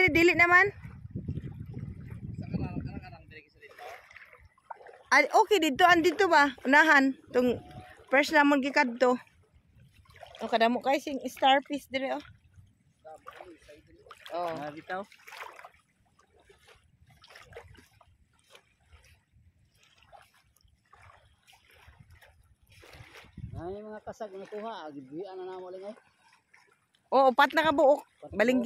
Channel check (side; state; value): both; identical; correlation 1.00